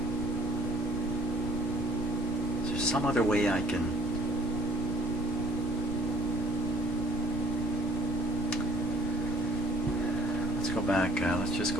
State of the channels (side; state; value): both; normal; correlation 0.57